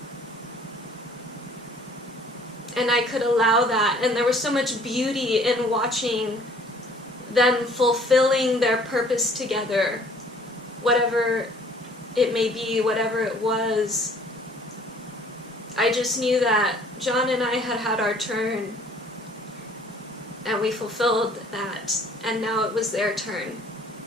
And I could allow that, and there was so much beauty in watching them fulfilling their purpose together, whatever it may be, whatever it was. I just knew that John and I had had our turn, and we fulfilled that, and now it was their turn.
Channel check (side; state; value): both; normal; correlation 0.56